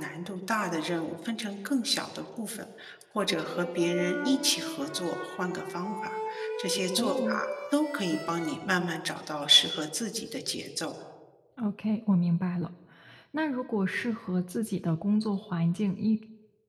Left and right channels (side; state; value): both; identical; correlation 1.00